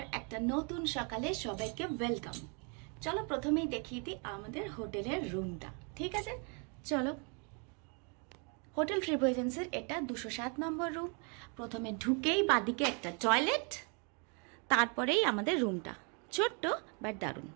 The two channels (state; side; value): quieter; left; 36.2 dB